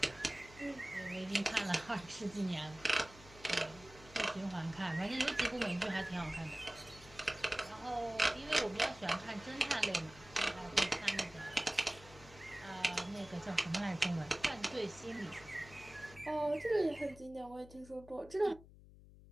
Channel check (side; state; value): left; noise; hum, 20 dB below the sound